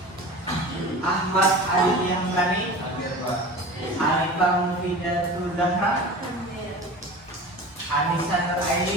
Ahmad Aditya Hamdani, hadir Pak. Arifah Mufidatul Zahra, Anissa Nur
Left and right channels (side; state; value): both; normal; correlation 0.35